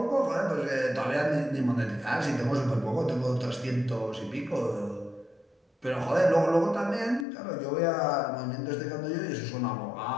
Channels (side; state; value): right; drops out; at 7.2 s